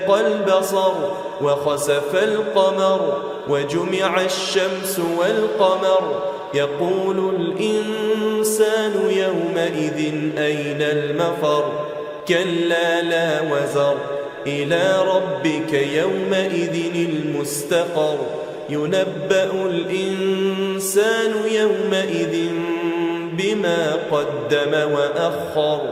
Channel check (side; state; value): both; identical; correlation 1.00